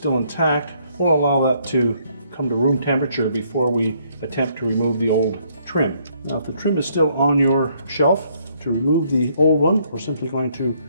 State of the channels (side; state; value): both; inverted; correlation -0.68